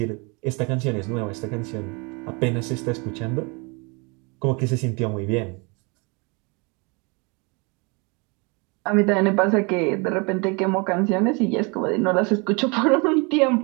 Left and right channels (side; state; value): left; quieter; 30.4 dB